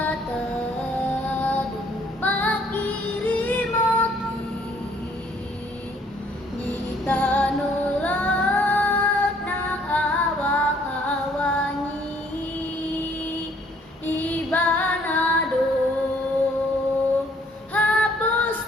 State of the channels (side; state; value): both; normal; correlation 0.63